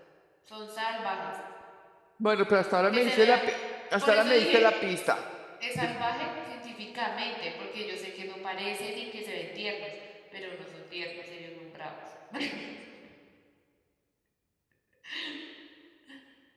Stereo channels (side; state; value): both; identical; correlation 1.00